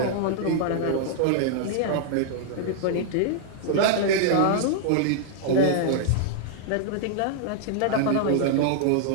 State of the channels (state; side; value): different; both; correlation -0.01